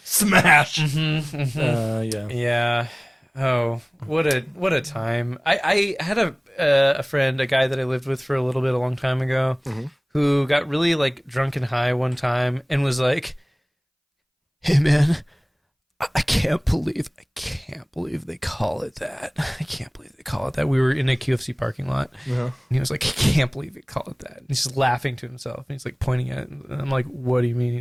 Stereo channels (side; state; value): both; identical; correlation 1.00